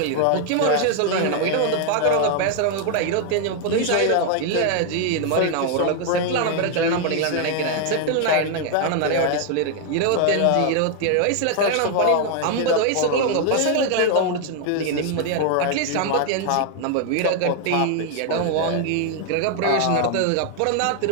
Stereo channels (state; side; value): different; both; correlation 0.00